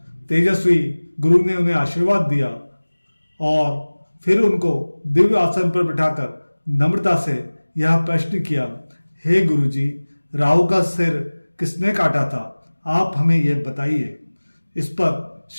तेजस्वी गुरु ने उन्हें आशीर्वाद दिया और फिर उनको दिव्य आसन पर बिठाकर नम्रता से यह प्रश्न किया, हे गुरुजी, राहु का सिर किसने काटा था? आप हमें यह बताइए। इस पर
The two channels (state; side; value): inverted; both; correlation -1.00